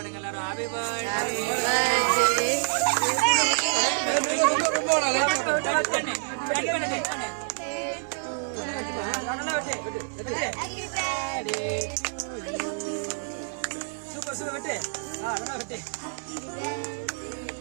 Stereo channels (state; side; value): silent; left; 60 dB below the other